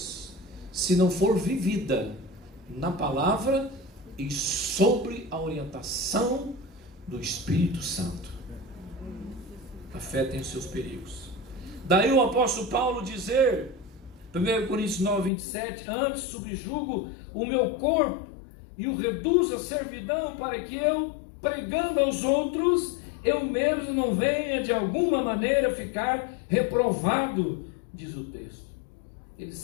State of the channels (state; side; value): drops out; right; at 15.3 s